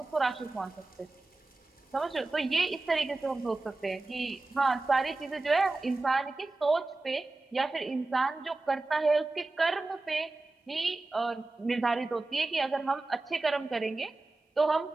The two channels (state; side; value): quieter; left; 3.2 dB